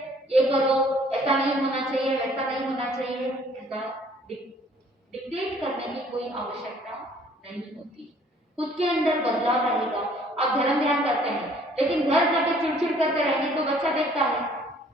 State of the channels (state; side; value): normal; both; correlation 0.58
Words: ये करो, ऐसा नहीं होना चाहिए, वैसा नहीं होना चाहिए, ऐसा डिक्टेट करने की कोई आवश्यकता नहीं होती। खुद के अंदर बदलाव रहेगा। आप धर्म ध्यान करते हैं, लेकिन घर जाके चिड़चिड़ करते रहेंगे तो बच्चा देखता है